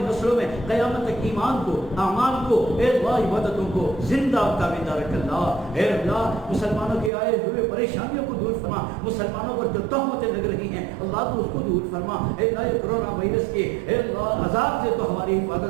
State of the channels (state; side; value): drops out; left; at 7.1 s